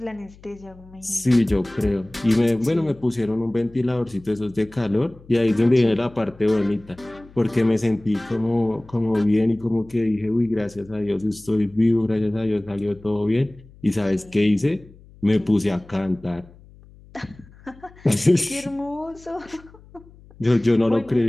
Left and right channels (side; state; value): left; noise; hum, 24 dB below the sound